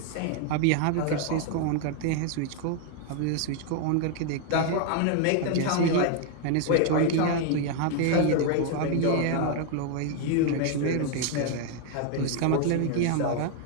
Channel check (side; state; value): both; different; correlation 0.00